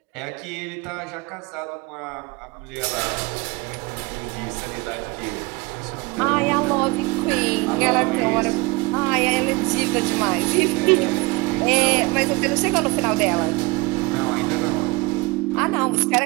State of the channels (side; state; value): left; quieter; 24.2 dB